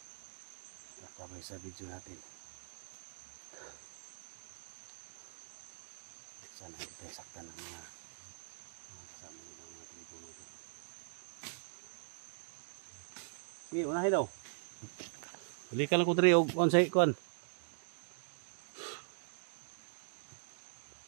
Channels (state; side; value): silent; left; digital silence